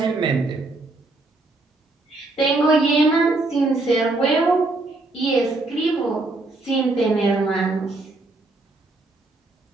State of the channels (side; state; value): left; quieter; 3.1 dB